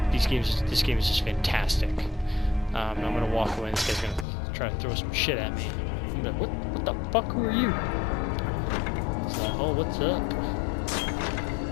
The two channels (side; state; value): right; drops out; at 4.2 s